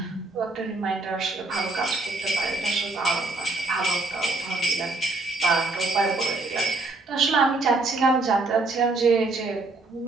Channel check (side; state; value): left; quieter; 3.3 dB